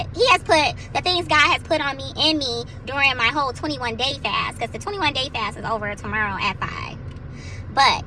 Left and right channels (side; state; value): both; identical; correlation 1.00